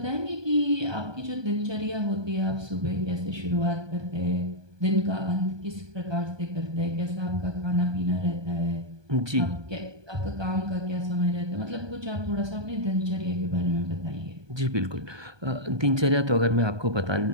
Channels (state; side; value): late; left; 1.2 ms